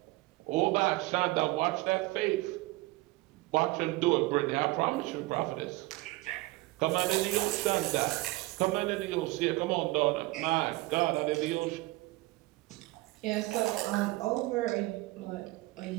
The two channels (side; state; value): left; quieter; 20.9 dB